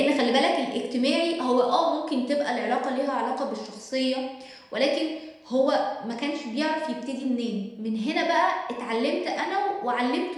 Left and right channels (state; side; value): identical; both; correlation 1.00